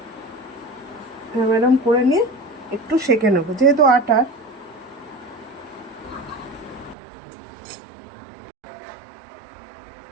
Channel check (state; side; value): drops out; left; at 7.0 s